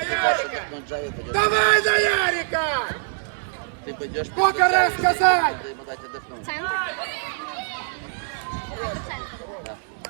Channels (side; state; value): left; silent; digital silence